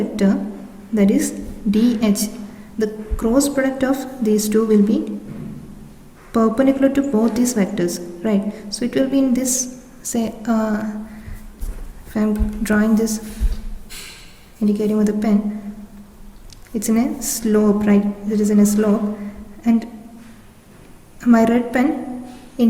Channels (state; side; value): identical; both; correlation 1.00